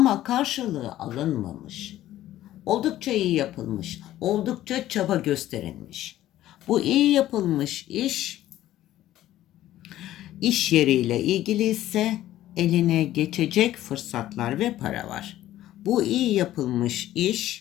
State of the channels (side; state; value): right; quieter; 13.8 dB